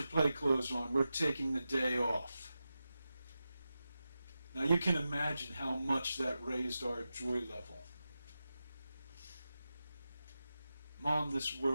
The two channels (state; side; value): inverted; both; correlation -0.92